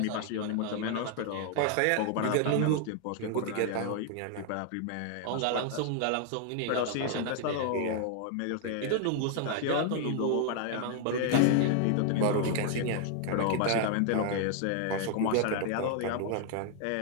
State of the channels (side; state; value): both; different; correlation 0.00